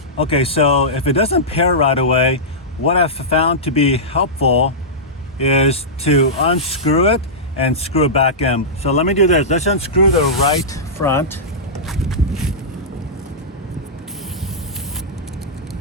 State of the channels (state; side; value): normal; both; correlation -0.14